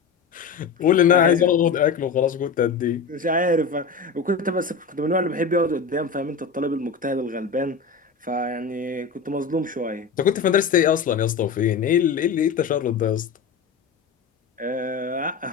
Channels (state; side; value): quieter; right; 5.4 dB